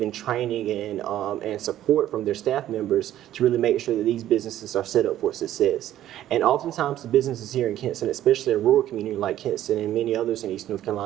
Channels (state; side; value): quieter; left; 12.6 dB